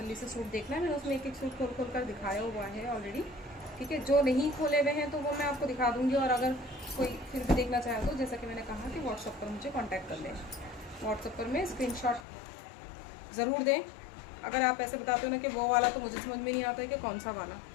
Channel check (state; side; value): drops out; right; at 12.2 s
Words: से सूट देखना है, मैंने उसमें एक एक सूट खोल कर दिखाया हुआ है ऑलरेडी। ठीक है, जो नहीं खोले हुए हैं तो वो मैं आपको दिखा दूंगी। और अगर कोई फिर भी देखना चाहे तो, जैसा कि मैंने कहा कि व्हाट्सएप पर मुझे कांटेक्ट कर लें। व्हाट्सएप पर मैं स्क्रीनशॉट ज़रूर दें। अगर आप ऐसे बताते हो ना कि वो वाला, तो मुझे समझ में नहीं आता है कि कौन सा वाला।